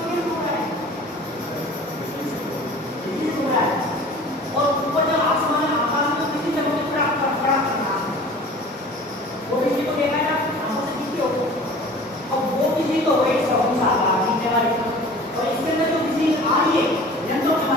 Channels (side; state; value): both; normal; correlation 0.43